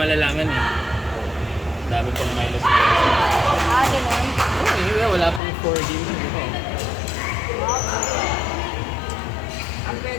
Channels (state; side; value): drops out; right; at 5.4 s